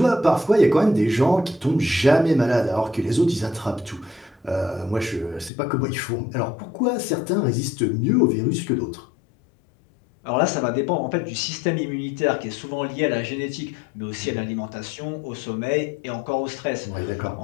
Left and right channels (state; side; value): drops out; right; at 5.5 s